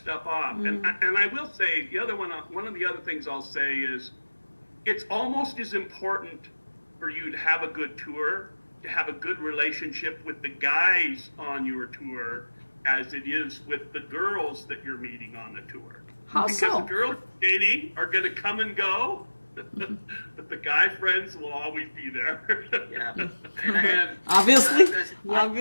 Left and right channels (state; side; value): inverted; both; correlation -1.00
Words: off. And I will say one of the other things I'll say is, it's almost as important for you to have a good tour, to have a good relationship with the guys on your tour, as it is with the girls that you're meeting on the tour. How because so? the girls dating are going to come and go, but the guy friends will always be there. Yeah. And